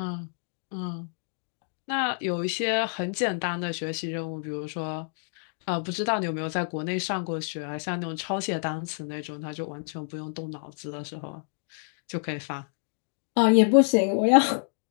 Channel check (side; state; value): right; silent; digital silence